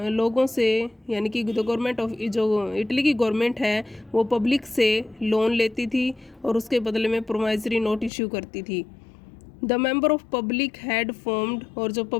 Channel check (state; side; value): drops out; right; at 8.1 s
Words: लोगों से यानी कि the government of जो Italy की गवर्नमेंट है वो पब्लिक से लोन लेती थी और उसके बदले में प्रोमाइजरी नोट इश्यू करती थी। The member of public had formed और जो